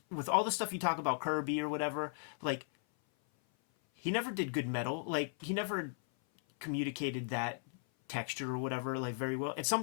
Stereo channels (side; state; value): right; silent; 53 dB below the other